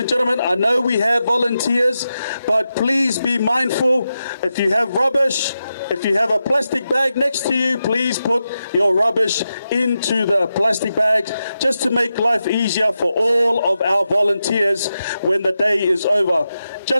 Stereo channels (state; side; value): inverted; both; correlation -0.89